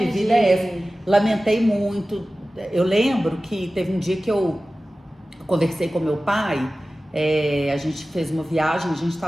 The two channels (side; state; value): both; normal; correlation 0.96